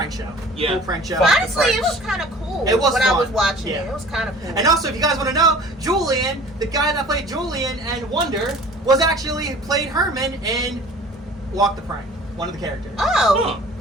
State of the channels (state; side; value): normal; both; correlation 0.46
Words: show. Yeah. Cool prank show. Honestly, it was kind of cool. It was when I was fun. watching Yeah. it. It was kind of cool. And also, if you guys want to know, Julian, the guy that played Julian and Wonder, was actually played Herman in Walk the Prank, one of the characters. Oh,